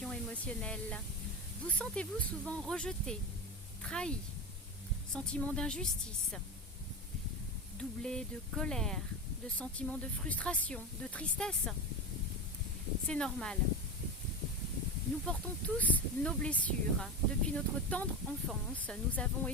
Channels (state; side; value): normal; both; correlation 0.20